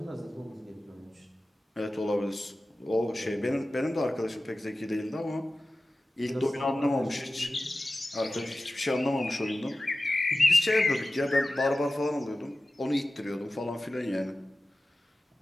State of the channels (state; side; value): normal; both; correlation 0.95